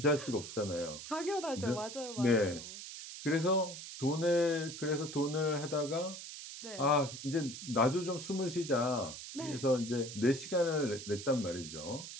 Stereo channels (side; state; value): right; noise; hiss, 10 dB below the sound